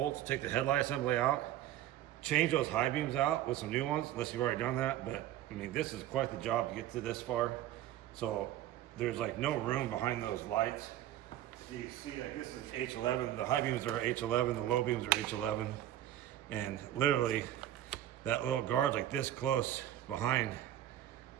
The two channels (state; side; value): quieter; left; 12.8 dB